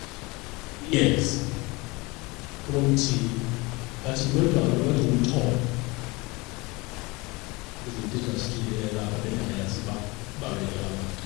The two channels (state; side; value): quieter; right; 24.6 dB